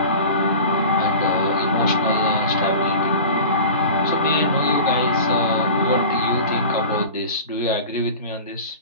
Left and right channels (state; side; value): inverted; both; correlation -0.36